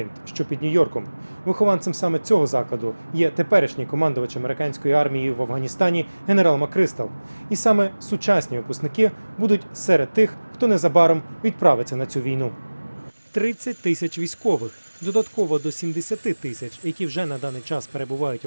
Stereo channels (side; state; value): both; inverted; correlation -1.00